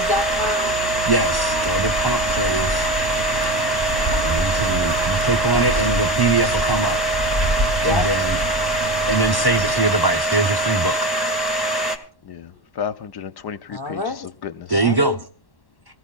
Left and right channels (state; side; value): late; right; 1.1 ms